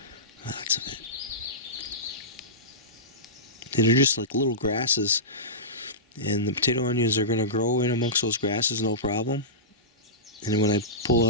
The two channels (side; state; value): both; normal; correlation -0.18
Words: Lots of it. And they're just like little grasses. And the potato onions are going to grow in amongst those grasses, no problem. And then when I